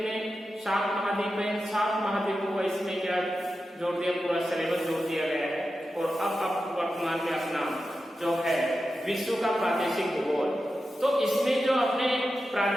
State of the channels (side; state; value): both; normal; correlation 0.91